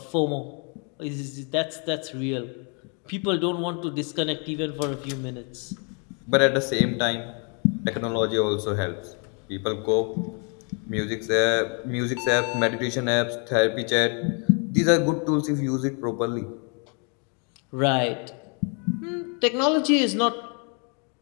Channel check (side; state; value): right; quieter; 37.8 dB